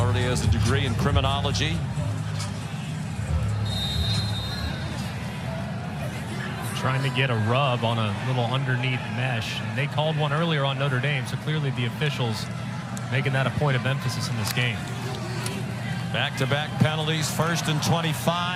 has a degree in criminology. Trying to get a rub on a little underneath mesh. And they called one earlier on Notre Dame, so clearly the officials making that a point of emphasis in this game. Back-to-back penalties, 1st and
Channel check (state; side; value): identical; both; correlation 1.00